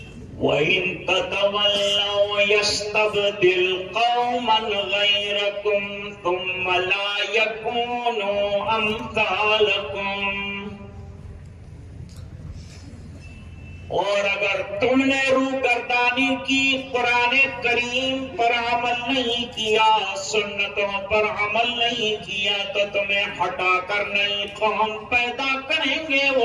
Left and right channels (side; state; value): both; identical; correlation 1.00